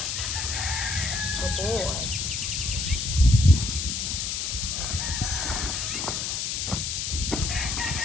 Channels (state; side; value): noise; left; hiss, 2 dB below the sound